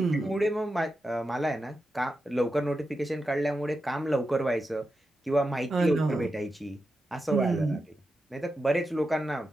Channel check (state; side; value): normal; both; correlation 0.89